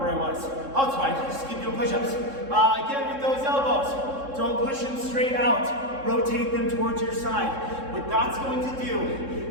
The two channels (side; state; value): left; late; 3.6 ms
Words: I was. Oh, it's fine. Just keep doing push-ups. Again, with those elbows, don't push them straight out. Rotate them towards your side. What that's going to do